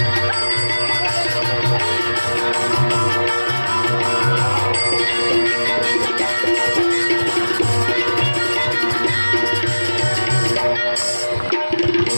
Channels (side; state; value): both; inverted; correlation -1.00